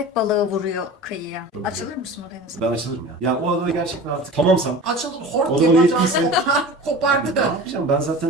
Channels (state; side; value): normal; both; correlation 0.36